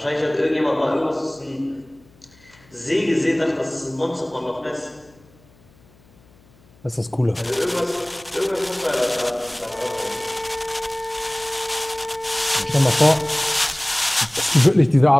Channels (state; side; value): noise; left; hum, 29 dB below the sound